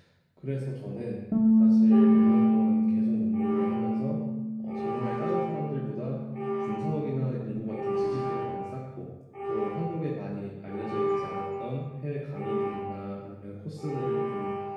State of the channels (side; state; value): both; identical; correlation 1.00